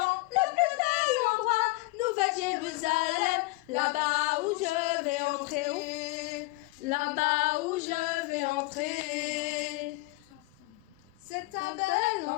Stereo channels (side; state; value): right; quieter; 22.2 dB